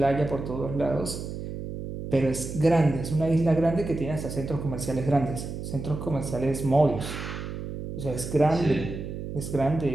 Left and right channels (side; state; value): right; noise; hum, 7 dB below the sound